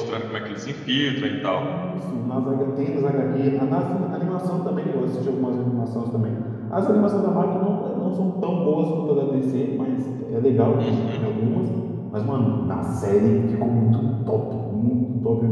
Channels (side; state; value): both; identical; correlation 1.00